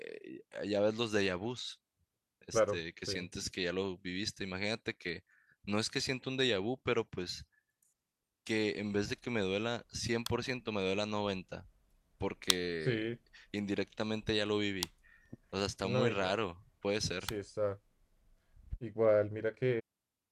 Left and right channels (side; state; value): both; identical; correlation 1.00